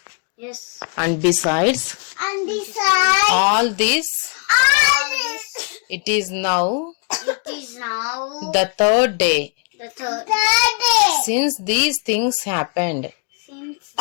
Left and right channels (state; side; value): quieter; right; 39.0 dB